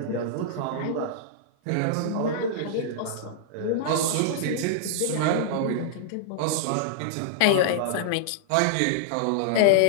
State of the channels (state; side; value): different; both; correlation -0.01